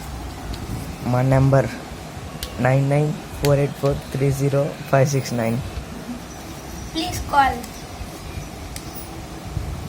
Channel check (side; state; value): both; identical; correlation 1.00